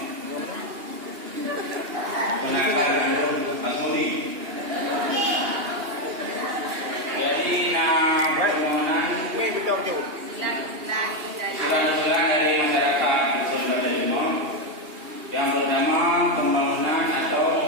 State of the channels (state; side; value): late; left; 2.8 ms